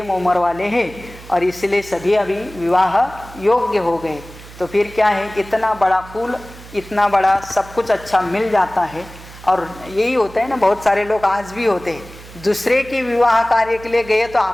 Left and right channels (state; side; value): noise; right; hum, 18 dB below the sound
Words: उम्र वाले हैं और इसलिए सभी अभी विवाह योग्य हो गए। तो फिर क्या है, इतना बड़ा फूल, इतना बड़ा सब कुछ अच्छा मिल जाता है। और यही होता है ना, बहुत सारे लोग आज भी होते हैं, दूसरे के विवाह कार्य के लिए गए तो